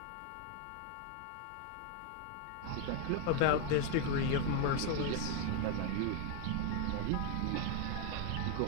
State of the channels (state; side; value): different; both; correlation 0.01